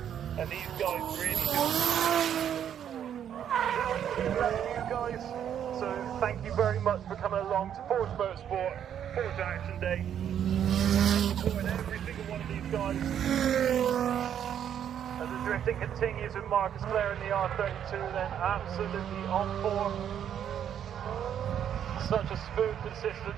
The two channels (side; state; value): left; quieter; 9.4 dB